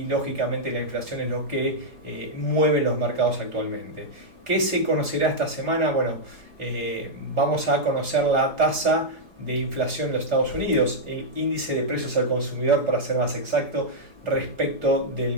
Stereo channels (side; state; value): left; late; 4.9 ms